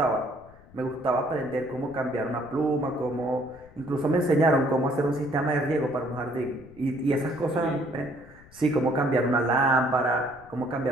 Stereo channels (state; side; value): noise; left; rumble, 23 dB below the sound